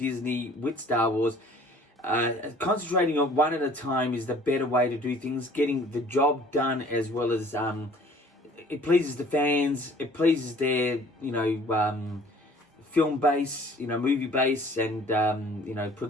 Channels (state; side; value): normal; both; correlation 0.53